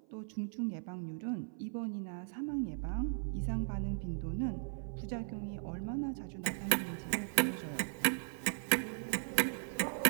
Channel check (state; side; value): silent; left; 53 dB below the other